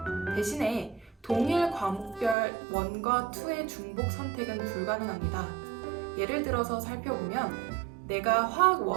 대신에 동일 과목별 1과 2의 중복 선택은 불가능합니다. 예를 들어서 살펴보면 내가 화학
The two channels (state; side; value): drops out; left; at 2.4 s